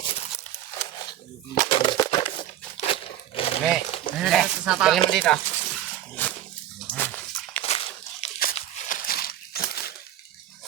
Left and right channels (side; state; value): left; quieter; 12.1 dB